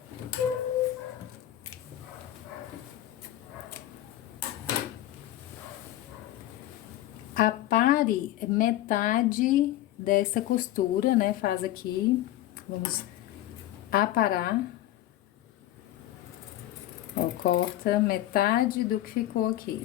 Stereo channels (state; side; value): quieter; right; 14.1 dB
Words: Apare metade dessa costura, né? Faz aqui, vamos aparar. Ó, corta metade do que ficou